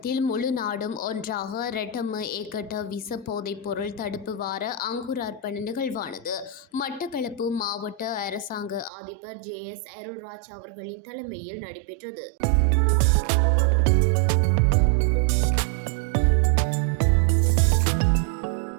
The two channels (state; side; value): drops out; left; at 8.9 s